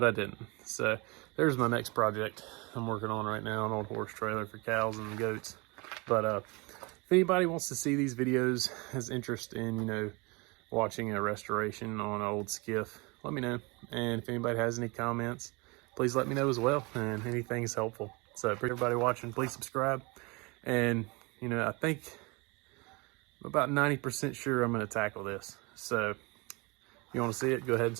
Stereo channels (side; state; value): left; quieter; 27.3 dB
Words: I didn't. So there's my next project I'm working on right now, an old horse trailer for cows and goats. But if anybody wants to see these videos, has interest in, you know, watching a restoration on an old skiff, let me know. And if anybody has any comments, please let me know as well, and anything is helpful. So for everybody watching, please subscribe. And, you know, I think I'm about 90% sure I'm going to tackle this. So if you want to see it, go ahead and